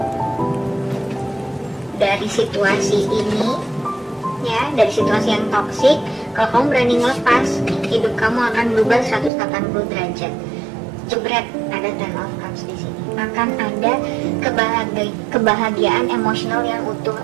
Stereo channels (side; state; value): left; drops out; at 9.3 s